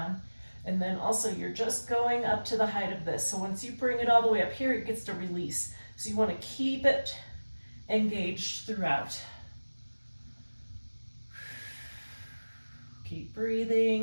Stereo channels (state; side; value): inverted; both; correlation -1.00